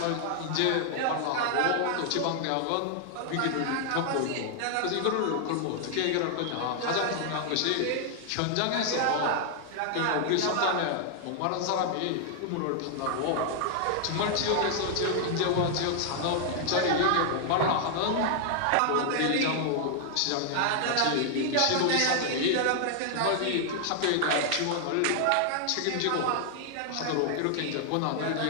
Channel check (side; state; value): both; different; correlation 0.00